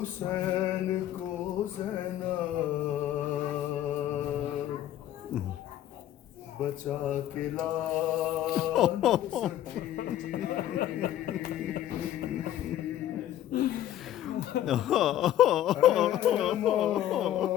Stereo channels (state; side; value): quieter; right; 12.2 dB